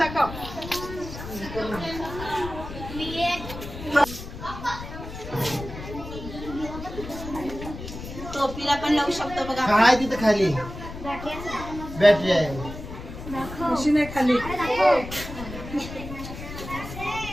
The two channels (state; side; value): noise; left; rumble, 10 dB below the sound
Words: टोपीला पण लावू शकतो बघा. काय तिथं खाली बॅटरी आहे. मशीन आहे खाली.